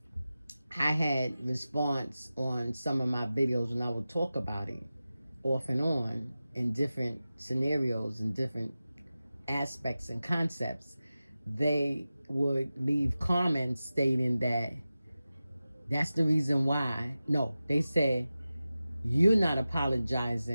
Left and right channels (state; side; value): inverted; both; correlation -0.95